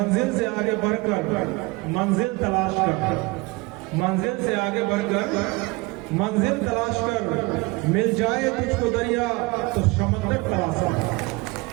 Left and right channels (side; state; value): left; quieter; 24.7 dB